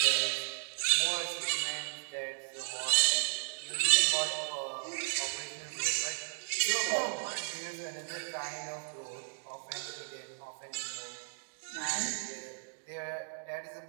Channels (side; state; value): left; silent; digital silence